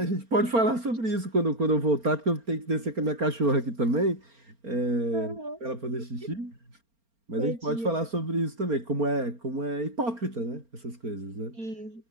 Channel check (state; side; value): late; left; 4.3 ms